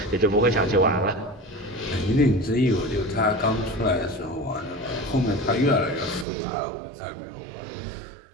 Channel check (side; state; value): left; drops out; at 6.2 s